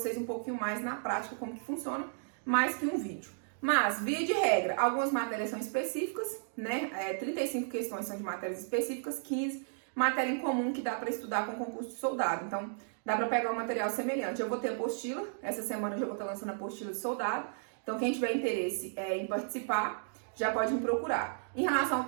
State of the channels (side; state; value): left; silent; digital silence